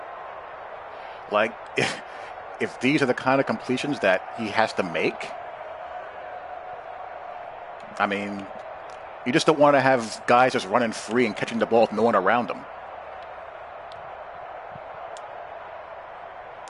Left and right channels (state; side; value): identical; both; correlation 1.00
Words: Like, if these are the kind of completions that he has to make, I mean, you just don't want to have guys just running free and catching the ball with no one around them.